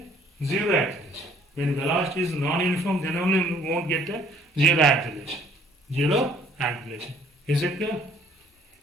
zero acceleration. When velocity is non-uniform, then only you won't get a zero acceleration. Zero acceleration. Is it clear?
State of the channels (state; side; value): normal; both; correlation 0.59